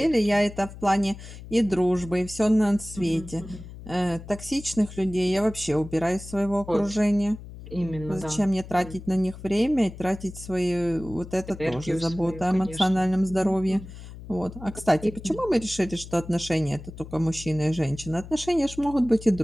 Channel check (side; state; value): left; noise; hum, 14 dB below the sound